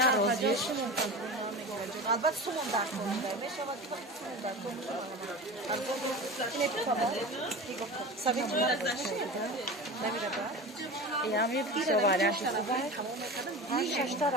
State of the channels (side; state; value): both; normal; correlation 0.31